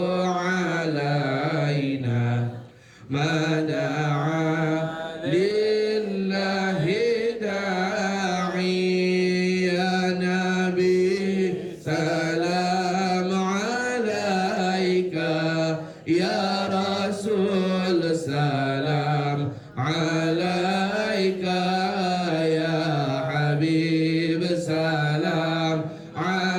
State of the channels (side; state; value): both; identical; correlation 1.00